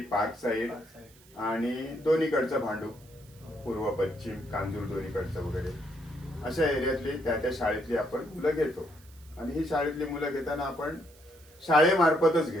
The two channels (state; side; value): noise; right; hiss, 26 dB below the sound